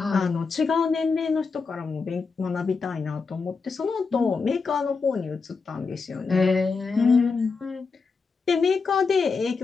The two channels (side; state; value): right; quieter; 4.7 dB